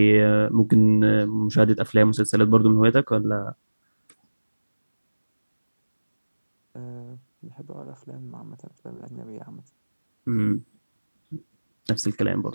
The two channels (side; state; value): both; inverted; correlation -1.00